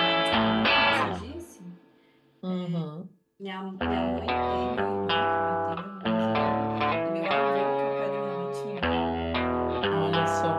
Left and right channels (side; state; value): both; identical; correlation 1.00